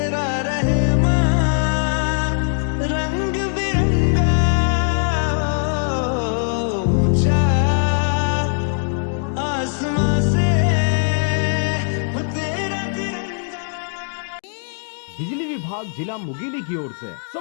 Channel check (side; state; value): right; silent; digital silence